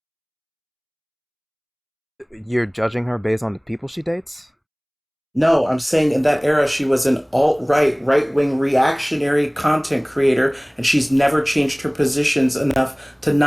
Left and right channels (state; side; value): identical; both; correlation 1.00